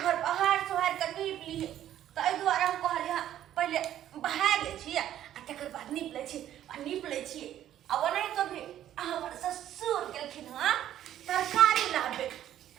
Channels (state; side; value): quieter; left; 11.7 dB